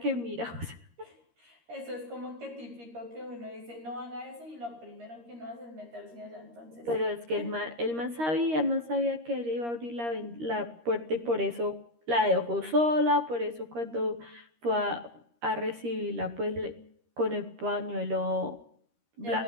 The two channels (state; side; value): late; left; 13 ms